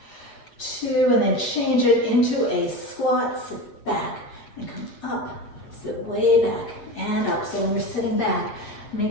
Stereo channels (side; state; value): right; late; 8.3 ms